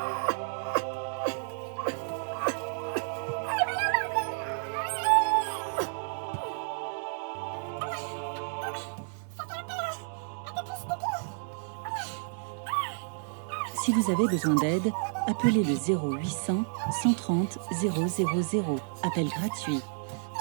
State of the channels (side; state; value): left; silent; digital silence